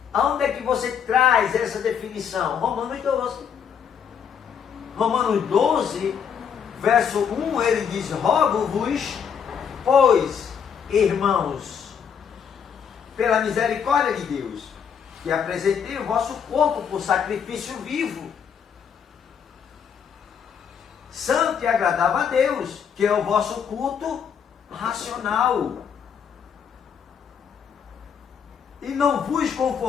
Aonde é que você traz essa definição? Romanos 12. Romanos 12, verso 1, ele diz: rogo-vos, pois, irmãos, pela misericórdia de Deus, que apresentei o vosso corpo por sacrifício vivo, santo e agradável a Deus, que é o vosso culto racional. E não vos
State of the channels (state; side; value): quieter; right; 7.4 dB